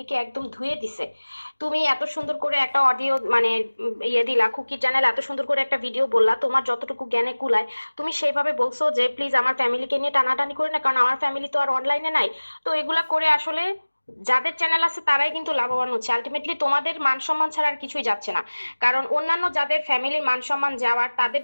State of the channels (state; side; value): inverted; both; correlation -1.00